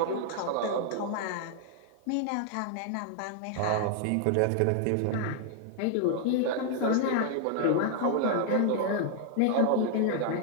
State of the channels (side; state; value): both; different; correlation 0.00